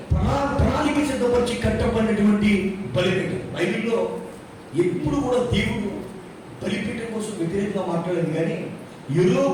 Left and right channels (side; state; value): both; identical; correlation 1.00